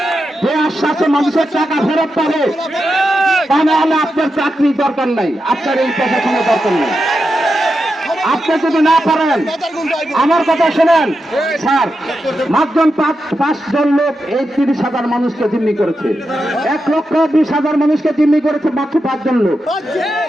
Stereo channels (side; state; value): both; normal; correlation 0.88